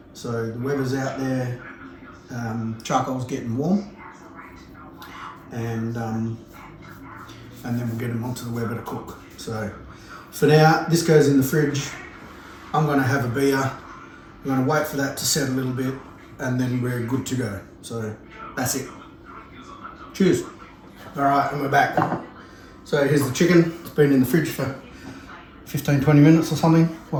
So the Weber's out there, charcoal's getting warm, and then we'll get them onto the Weber to cook. So for now, this goes in the fridge. I'm going to have a beer. I'm going to wait for that to set a little bit, and then we're good to go. So that's it. Cheers. All right, and we're back. So here's the chicken. It's been in the fridge for 15-20 minutes or something,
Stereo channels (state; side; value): identical; both; correlation 1.00